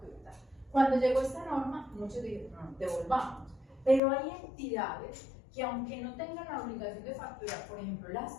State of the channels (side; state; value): right; drops out; at 4.0 s